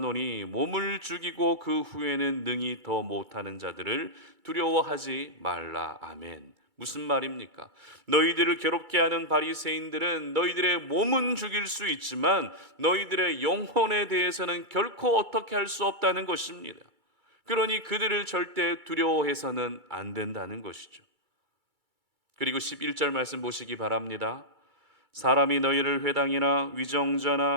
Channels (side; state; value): left; late; 2.3 ms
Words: 몸을 죽이고 그 후에는 능히 더 못하는 자들을 두려워하지 말라. 아멘. 무슨 말입니까? 너희들을 괴롭게 하는 바리새인들은 너희들의 몸은 죽일 수 있지만 너희들의 영혼에 대해서는 결코 어떻게 할 수 없다는 것입니다. 그러니 그들을 절대 두려워해서는 안 된다는 것이죠. 그리고 11절 말씀 보시기 바랍니다. 사람이 너희를 회당이나